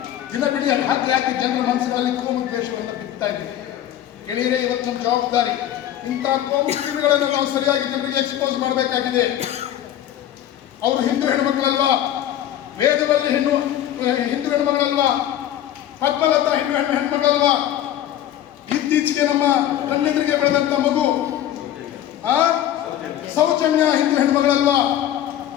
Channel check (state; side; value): quieter; right; 11.7 dB